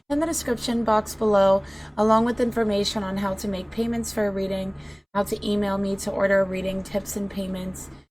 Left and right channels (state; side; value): identical; both; correlation 1.00